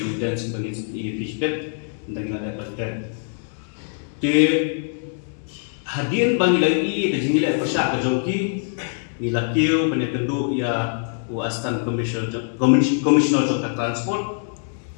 sebagai fishbet dan ada paten di hadir bagi lagi dan jingle persak ke joki nila kiu penyekendu ya uastan commissioner jok transport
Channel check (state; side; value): silent; right; digital silence